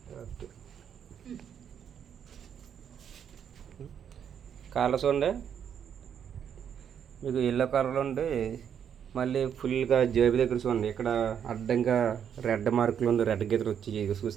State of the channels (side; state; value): left; quieter; 8.4 dB